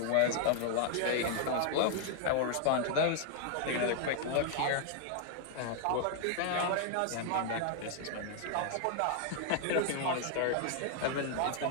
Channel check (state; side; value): different; both; correlation 0.00